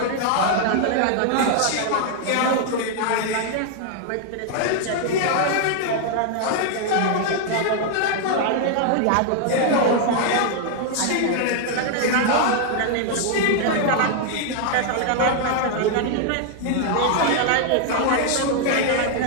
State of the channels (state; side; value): different; both; correlation 0.00